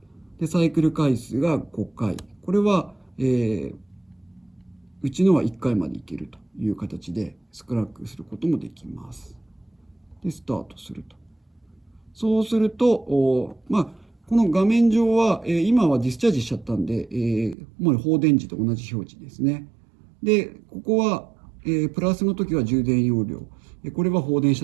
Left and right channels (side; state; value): left; drops out; at 17.6 s